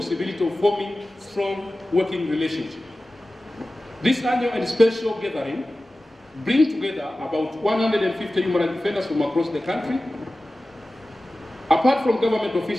of forming strong working relationships. This annual and special gathering brings together about 150 human rights defenders from across the country. Apart from government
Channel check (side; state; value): both; normal; correlation 0.96